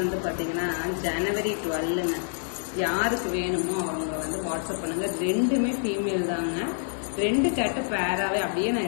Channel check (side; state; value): right; silent; digital silence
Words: பார்த்தீங்கன்னா ஜனவரி 12ங்க. யாருக்கு வேணுமோ அவங்க வந்து வாட்ஸ்அப் பண்ணுங்க. ரெண்டுமே ஃபீமேல் தாங்க. 2 கேட்டு பேராகவே அப்படியே